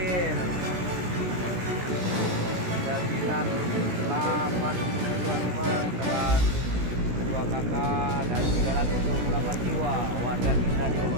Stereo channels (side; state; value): left; late; 17 ms